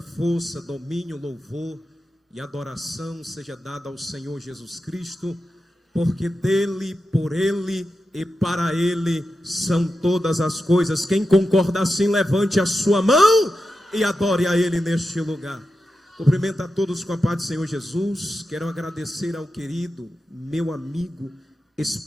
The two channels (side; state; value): both; normal; correlation 0.90